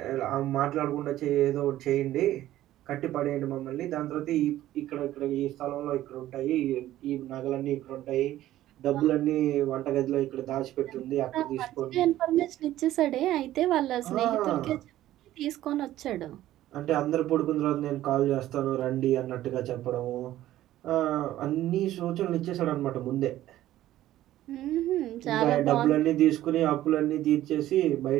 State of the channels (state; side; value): quieter; left; 14.0 dB